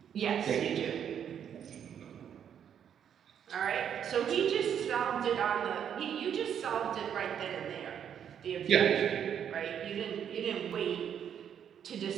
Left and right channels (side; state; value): left; quieter; 8.7 dB